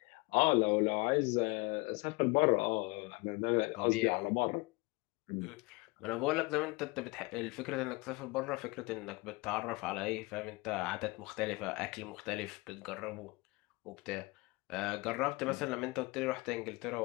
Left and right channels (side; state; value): right; quieter; 25.4 dB